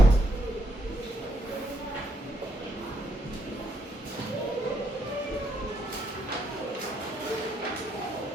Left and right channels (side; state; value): both; normal; correlation 0.75